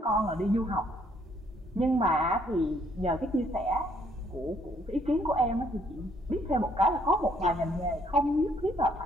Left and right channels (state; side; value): normal; both; correlation 0.67